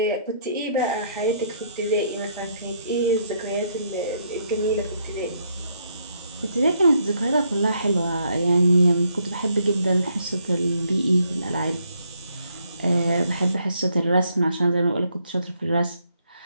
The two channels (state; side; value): inverted; both; correlation -0.72